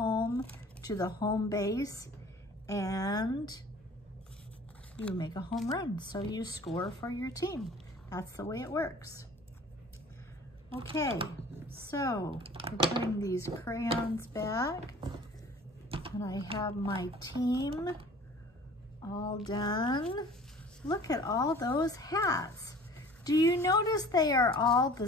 to the home base and you make a home run. So you score for your team. That's the way it works. Okay, so we're putting these crayons back and I have my team all done. Look at all those hats. Do you notice they are all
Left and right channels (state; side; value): normal; both; correlation 0.47